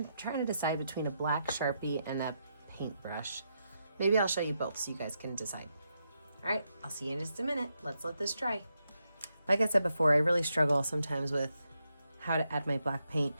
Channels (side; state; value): both; inverted; correlation -0.83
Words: try to decide between a black Sharpie and a paintbrush. Maybe I'll show you both so you guys can decide. All right, I'll see you in just a minute. Let's let this dry. Like I said before, I really struggle sometimes with how to add my black paint.